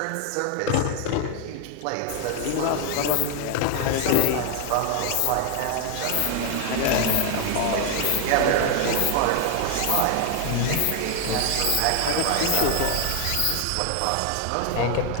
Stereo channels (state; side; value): different; both; correlation 0.00